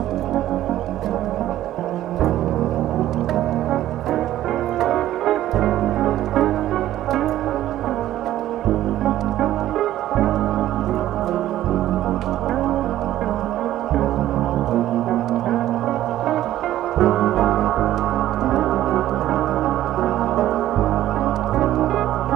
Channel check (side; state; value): left; quieter; 13.4 dB